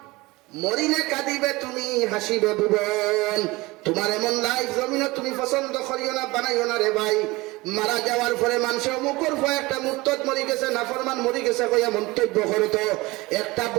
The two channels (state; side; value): quieter; left; 21.8 dB